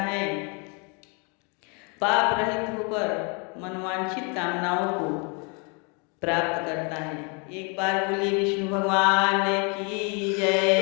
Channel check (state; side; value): quieter; right; 34.0 dB